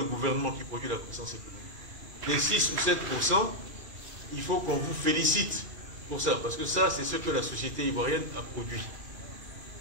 gouvernement qui produit la croissance économique. Les 6 ou 7%, il faut qu'on vous félicite pour ça, parce que ça, c'est ce que la société ivoirienne a produit.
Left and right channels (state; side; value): late; left; 2.3 ms